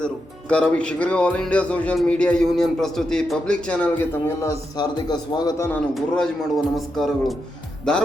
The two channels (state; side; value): normal; both; correlation 0.85